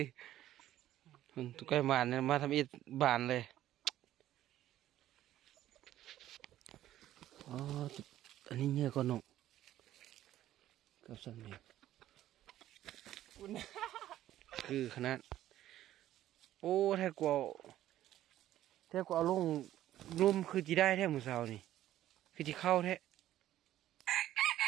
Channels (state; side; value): quieter; left; 13.1 dB